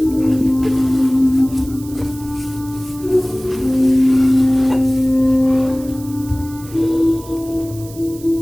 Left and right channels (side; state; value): right; noise; hiss, 19 dB below the sound